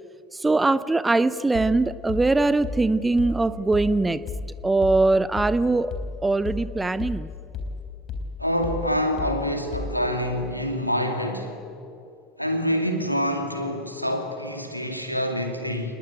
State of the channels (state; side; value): normal; both; correlation 0.54